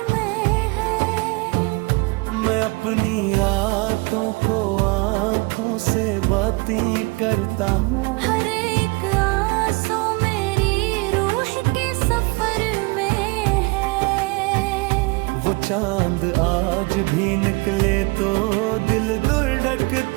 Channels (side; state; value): left; quieter; 26.9 dB